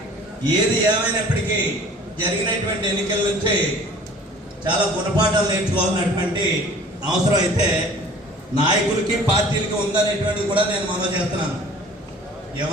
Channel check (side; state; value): both; normal; correlation 0.48